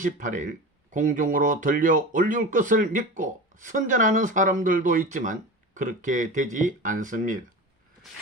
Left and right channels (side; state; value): both; normal; correlation 0.30